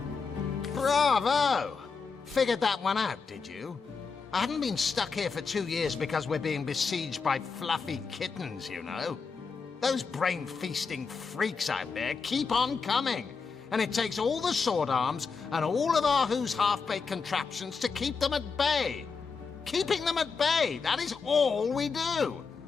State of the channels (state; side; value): quieter; right; 5.1 dB